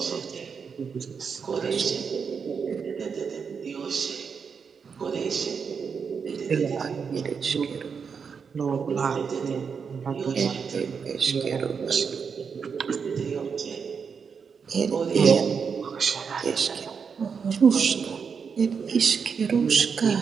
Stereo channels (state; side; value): quieter; left; 6.1 dB